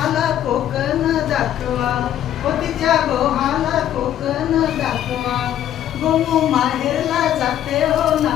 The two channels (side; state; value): right; quieter; 11.2 dB